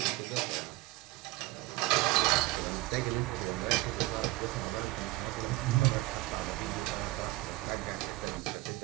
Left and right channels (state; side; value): quieter; left; 19.5 dB